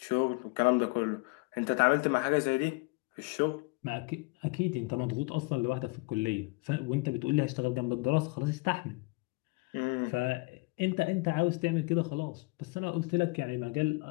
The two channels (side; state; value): right; quieter; 27.3 dB